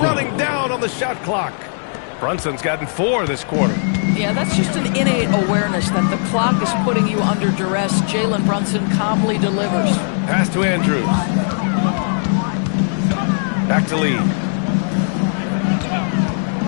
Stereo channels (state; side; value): silent; right; 67 dB below the other